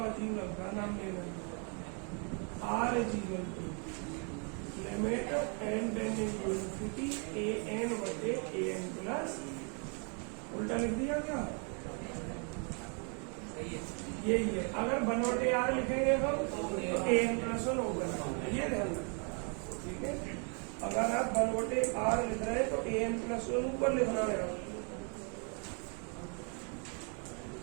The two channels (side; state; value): left; quieter; 38.3 dB